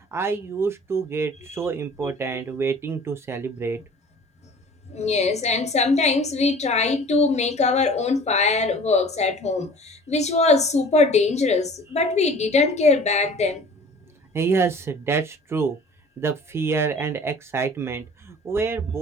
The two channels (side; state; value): both; normal; correlation 0.46